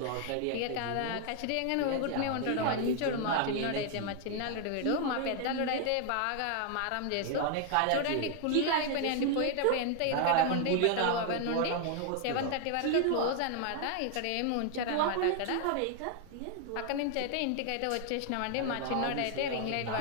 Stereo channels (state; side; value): different; both; correlation 0.00